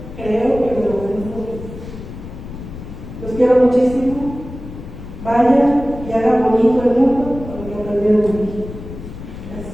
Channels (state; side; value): noise; left; rumble, 12 dB below the sound